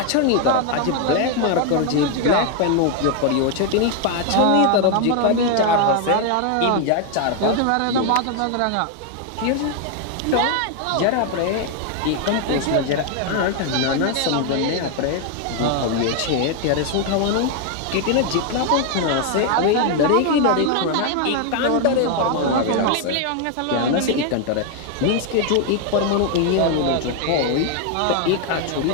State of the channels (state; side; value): different; both; correlation 0.01